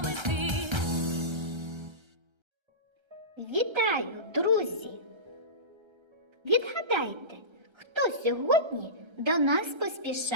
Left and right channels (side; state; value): left; late; 1.3 ms